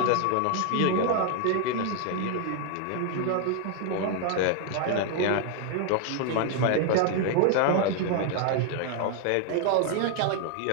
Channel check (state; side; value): different; both; correlation 0.00